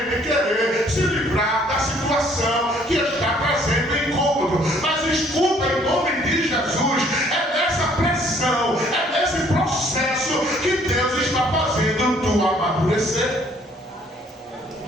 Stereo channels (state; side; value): normal; both; correlation 0.61